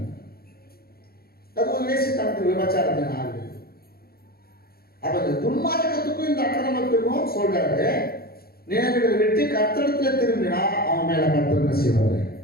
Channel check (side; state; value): right; late; 0.44 ms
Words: அது ஒரு வேசித்தனத்துக்கு விபச்சாரத்தின் ஆவி. அப்ப இந்த துன்மார்க்கத்துக்கும் இந்த அக்கிரமத்துக்கும் சொல்றாரு, நினைவுகளை வெட்டி கர்த்தரிடத்துல திரும்பினா அவன் மேல கர்த்தர் என்ன செய்வாரு,